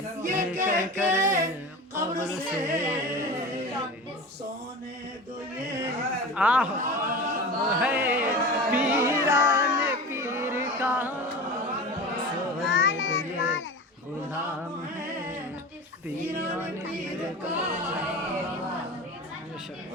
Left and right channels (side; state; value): both; normal; correlation 0.32